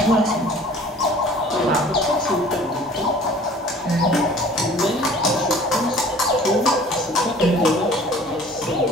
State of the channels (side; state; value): both; normal; correlation 0.49